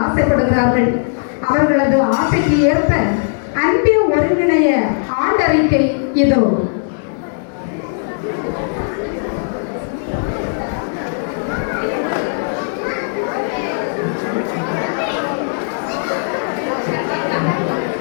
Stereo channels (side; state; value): right; silent; digital silence